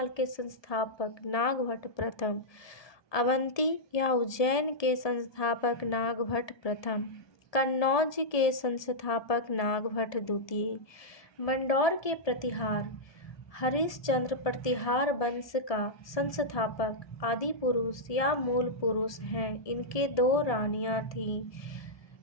के संस्थापक नागभट्ट प्रथम, अवंती या उज्जैन के संस्थापक नागभट्ट प्रथम, कन्नौज के संस्थापक नागभट्ट द्वितीय। मंडौर के प्रतिहार हरिश्चंद्र प्रतिहार वंश का संस्थापक आदि पुरुष या मूल पुरुष हैं। इनके 2 रानियां थीं,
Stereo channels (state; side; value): late; right; 1.2 ms